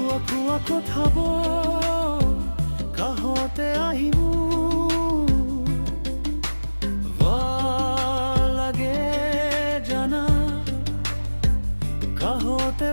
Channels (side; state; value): both; inverted; correlation -1.00